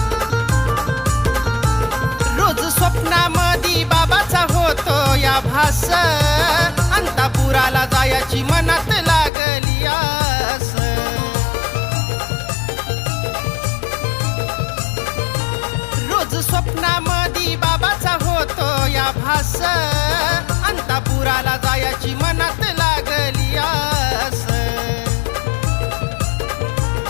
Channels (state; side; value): drops out; right; at 9.3 s